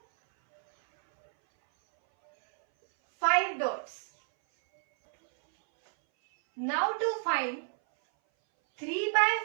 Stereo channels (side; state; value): left; silent; 59 dB below the other